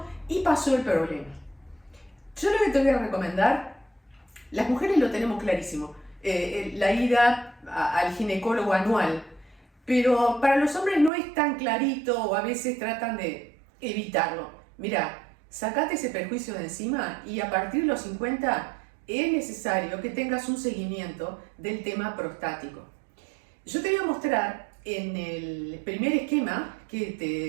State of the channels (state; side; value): drops out; left; at 11.1 s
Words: y pasó el problema. Yo lo que te voy a recomendar, las mujeres lo tenemos clarísimo, la ida al ginecólogo anual, pero para los hombres no es tan clarito o a veces tratan de evitarlo. Mirá, sacate ese perjuicio de encima y a partir de los 50 es necesario que tengas un seguimiento del tema prostático. Yo te voy a mostrar en el primer esquema que